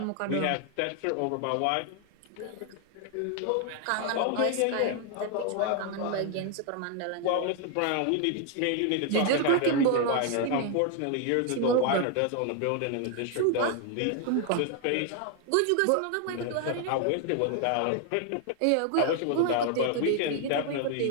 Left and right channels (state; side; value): different; both; correlation 0.00